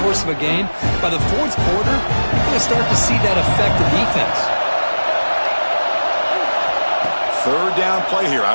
course of a game, by the 4th quarter, you're going to start to see that affect the defense. 3rd down play here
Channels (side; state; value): both; inverted; correlation -1.00